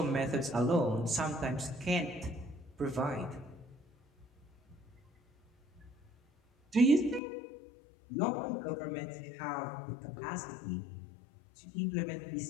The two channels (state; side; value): drops out; right; at 7.2 s